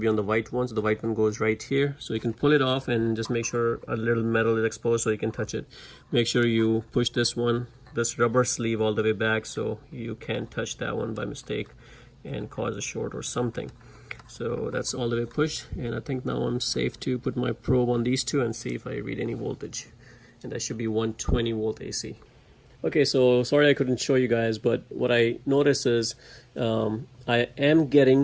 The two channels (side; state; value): both; identical; correlation 1.00